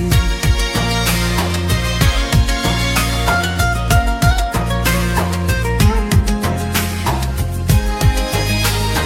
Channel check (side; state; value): both; identical; correlation 1.00